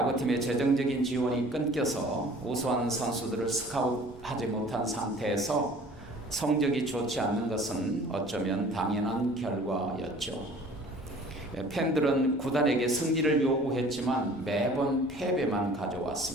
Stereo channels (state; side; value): normal; both; correlation 0.49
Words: 재정적인 지원이 끊겨서 우수한 선수들을 스카웃하지 못한 상태에서 성적이 좋지 않는 것은 어쩌면 당연한 결과였죠. 팬들은 구단에게 승리를 요구했지만 매번 패배만